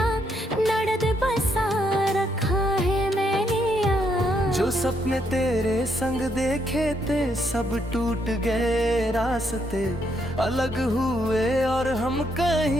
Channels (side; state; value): both; normal; correlation 0.75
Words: दर्द बसा रखा है मैंने आज। जो सपने तेरे संग देखे थे सब टूट गए, रास्ते अलग हुए और हम